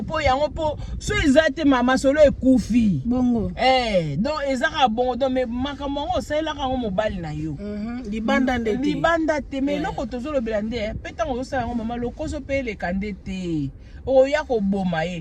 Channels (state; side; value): identical; both; correlation 1.00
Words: peut so ezate mama solo ekufi. Bongo. Donc ezaka bongo donc mais makamongo ça la ka mobile na yo. Libanda ndete. Libanda te mais loko tozolo belande petango zo sala mama lokoso pe le kandete. Oya ko boma ye.